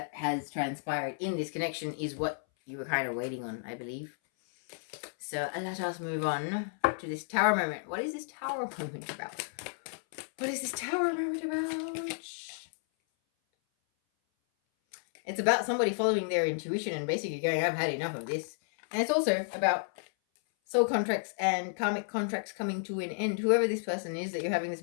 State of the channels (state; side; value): silent; right; 56 dB below the other